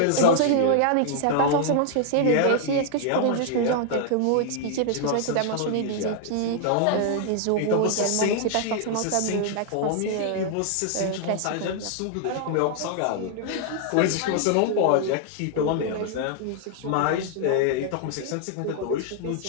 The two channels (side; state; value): both; different; correlation -0.01